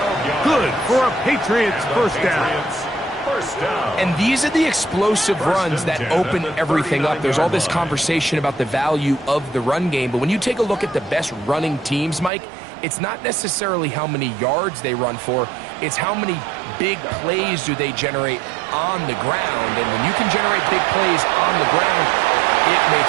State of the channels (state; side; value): drops out; left; at 12.3 s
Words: Good for a Patriots first down. And these are the explosive runs that open everything up. There's all this conversation about the value of the run game, but when you take a look at the best running teams, Mike, it's not necessarily how many yards they run for, it's how many big plays do they generate on the ground. And when you can generate big plays on the ground, it